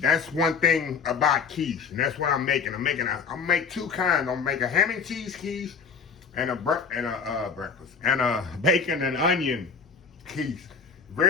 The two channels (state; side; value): quieter; right; 5.6 dB